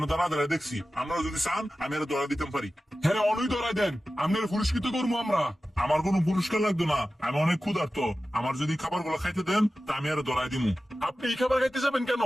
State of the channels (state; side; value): normal; both; correlation 0.95